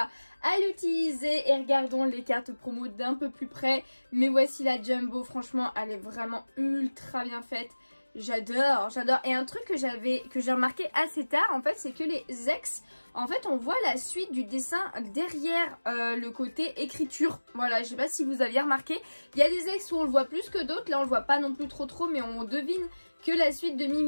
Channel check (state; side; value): inverted; both; correlation -1.00